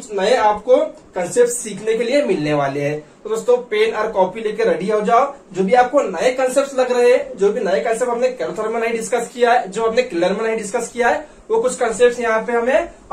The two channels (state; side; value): identical; both; correlation 1.00